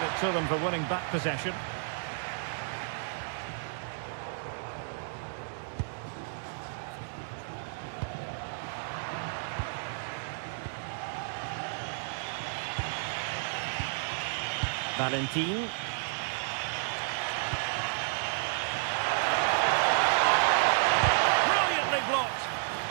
to them for winning back possession. Valentin. Brilliantly blocked.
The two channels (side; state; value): left; silent; digital silence